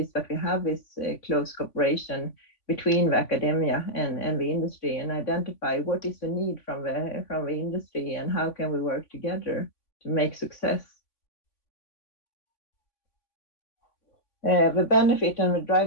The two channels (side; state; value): right; late; 3.5 ms